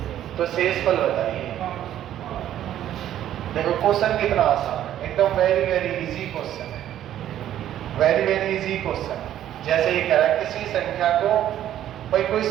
तो शेष फल बताइए। देखो क्वेश्चन कितना आसान है, एकदम वेरी वेरी इजी क्वेश्चन है, वेरी वेरी इजी क्वेश्चन। जैसे ये कह रहा है किसी संख्या को, भाई कोई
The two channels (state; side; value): quieter; left; 11.6 dB